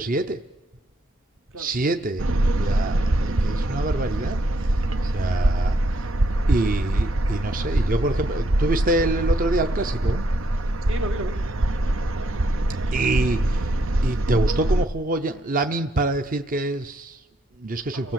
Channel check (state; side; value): normal; both; correlation 0.74